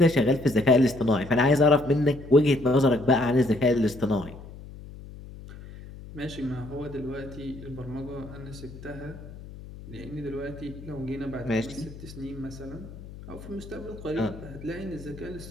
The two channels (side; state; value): left; noise; hum, 15 dB below the sound